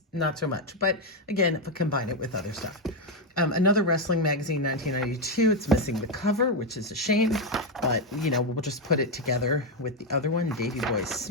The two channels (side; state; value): both; normal; correlation 0.05